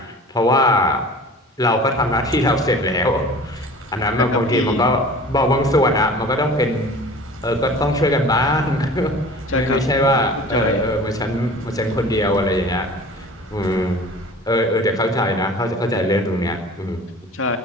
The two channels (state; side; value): normal; both; correlation 0.42